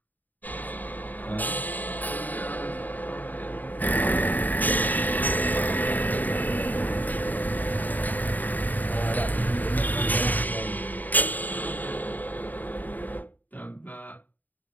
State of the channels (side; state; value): right; late; 0.084 ms